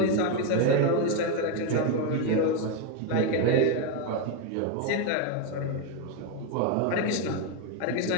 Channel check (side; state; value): both; different; correlation 0.02